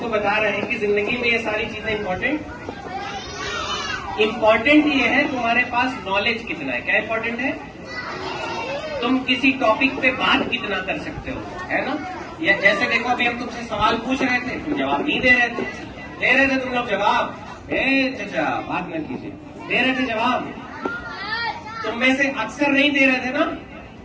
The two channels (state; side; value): identical; both; correlation 1.00